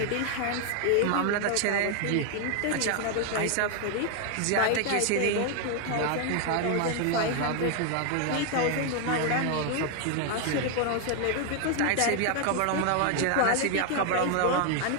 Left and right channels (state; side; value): different; both; correlation 0.00